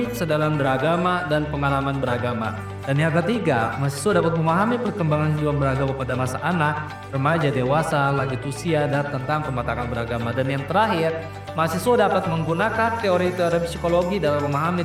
kesadaran beragama dan pengalaman beragama. Dan yang ketiga, mahasiswa dapat memahami perkembangan kehidupan beragama pada masa anak, remaja, dewasa, lanjut usia, dan tentang pematangan beragama. Dan yang terakhir, mahasiswa dapat menggunakan teori-teori psikologi dalam memahami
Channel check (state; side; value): identical; both; correlation 1.00